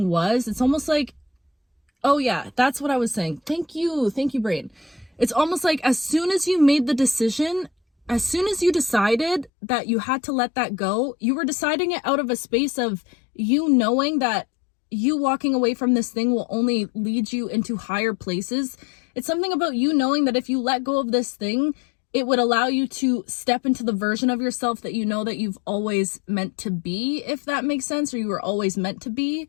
was, it's almost like, oh yeah, that's what I was saying. Thank you, brain. It's almost like as soon as you made the decision, as soon as you decided that you had to let that go, you were deciding it out of a space of you knowing that you walking away from this thing will only lead you into higher places. It's something about you knowing that if you let go of this thing, it would allow you to step into the version of yourself that you know that you've always meant to be, if that makes sense, or you were always meant to be.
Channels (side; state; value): right; drops out; at 9.5 s